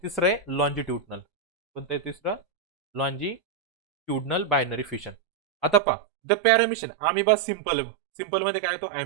तिसरं आहे लॉन्जिट्युडनल. कोणतं आहे तिसरं लॉन्जिट्युडनल बायनरी फिशन. आता पहा द पॅरामिशन अमिबा सिंपल सिंपल मध्ये काय येतो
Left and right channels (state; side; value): drops out; left; at 5.8 s